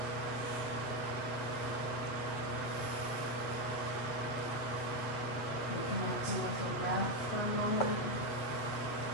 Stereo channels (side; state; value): right; late; 8.3 ms